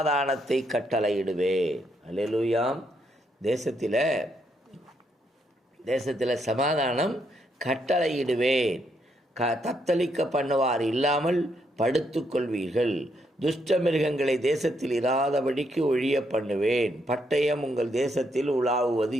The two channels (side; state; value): both; normal; correlation 0.76